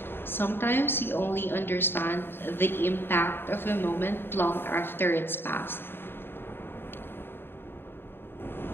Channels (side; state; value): right; late; 0.10 ms